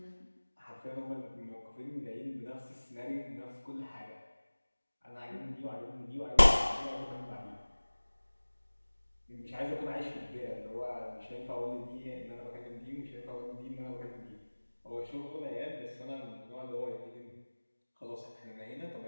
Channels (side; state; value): both; inverted; correlation -1.00